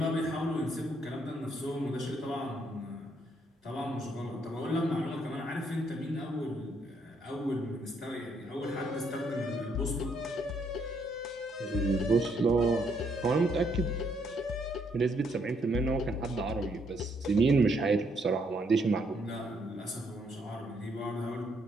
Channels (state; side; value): normal; both; correlation 0.72